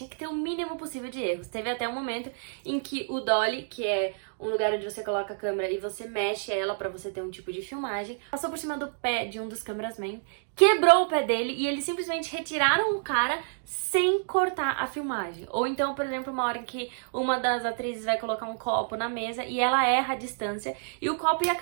que ter o mínimo possível de erros. Teve até um momento em que o dolly, que é um lugar onde você coloca a câmera e você mexe ela pra você ter um tipo de filmagem, passou por cima do pé de um dos cameramen, quebrou o pé dele e eles simplesmente retiraram o cara sem cortar a filmagem. Ou então, por exemplo, uma hora em que uma das atrizes vai colocar um copo na mesa e ela erra a distância e o copo ia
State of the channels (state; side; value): silent; left; digital silence